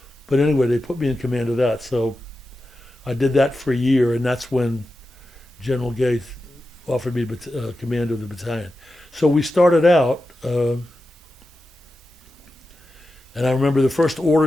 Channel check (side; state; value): both; normal; correlation 0.91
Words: anyway, they put me in command of that. So I did that for a year, and that's when General Gay offered me command of the battalion. So we started out, and I remember the first